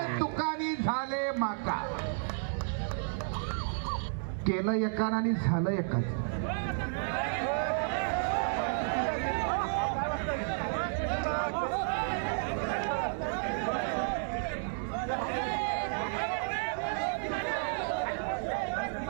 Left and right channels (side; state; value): left; silent; 56 dB below the other